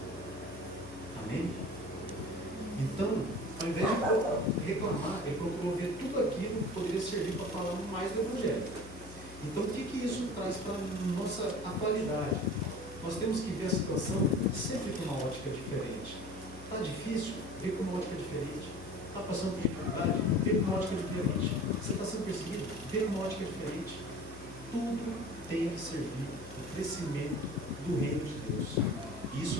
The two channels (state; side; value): noise; left; hum, 15 dB below the sound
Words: Amém? Então, ao invés de reclamar, ele procurou ver tudo aquilo que poderia servir para falar mais do Evangelho. Então, o que isso traz para a nossa atualidade? Nós temos que ver a situação sempre com uma ótica diferente. Está difícil? Vê com uma ótica diferente. Está passando por dificuldade? Vê com uma ótica diferente. Você está sendo perseguido? Vê com uma ótica diferente. Tudo tem que servir ao crescimento do reino de Deus. E